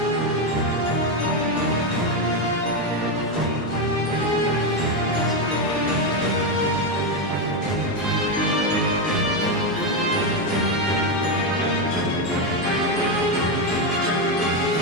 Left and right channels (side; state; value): both; normal; correlation 0.08